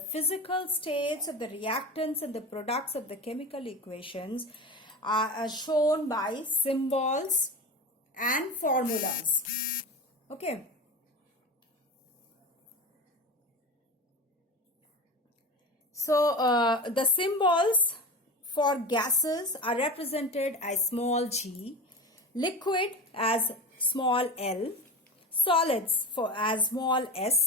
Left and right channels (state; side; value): normal; both; correlation 0.27